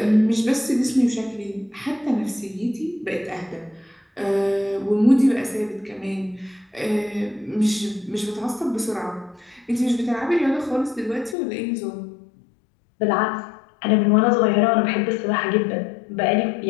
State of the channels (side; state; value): right; drops out; at 11.4 s